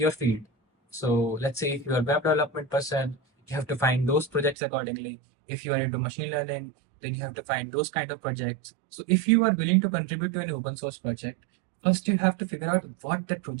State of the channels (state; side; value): drops out; left; at 4.5 s